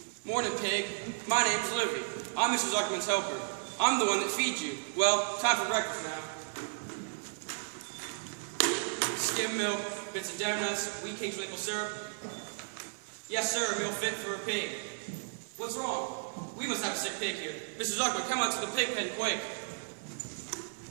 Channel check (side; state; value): left; silent; 55 dB below the other